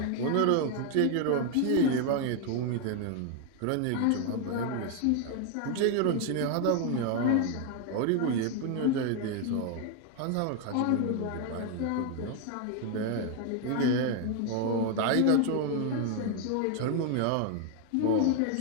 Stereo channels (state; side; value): different; both; correlation 0.01